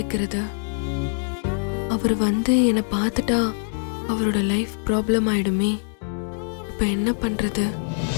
அவர் வந்து என்னை பார்த்துட்டா அவரோட லைஃப் ப்ராப்ளம் ஆயிடுமே. இப்ப என்ன பண்றது?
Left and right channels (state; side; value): silent; right; digital silence